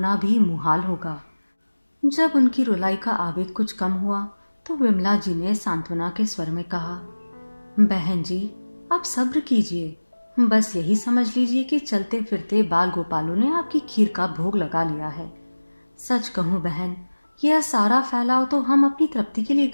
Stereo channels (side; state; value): both; inverted; correlation -1.00